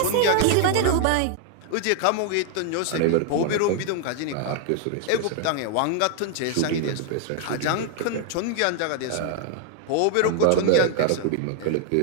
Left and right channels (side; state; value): both; different; correlation 0.00